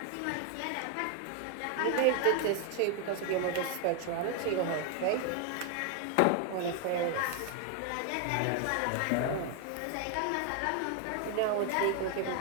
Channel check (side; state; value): both; different; correlation 0.01